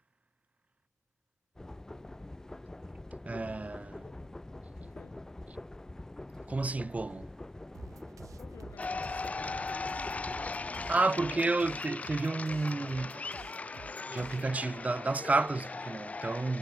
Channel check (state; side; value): normal; both; correlation 0.85